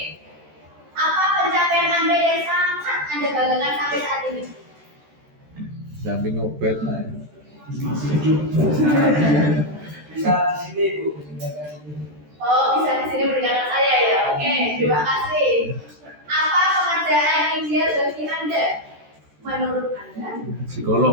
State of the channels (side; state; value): left; late; 13 ms